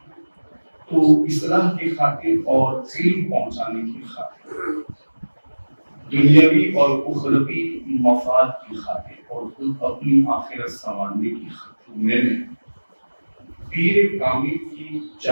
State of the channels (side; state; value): both; inverted; correlation -1.00